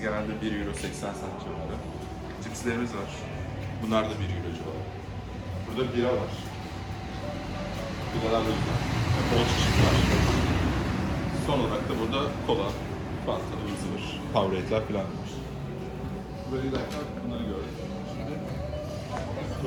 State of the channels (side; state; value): both; identical; correlation 1.00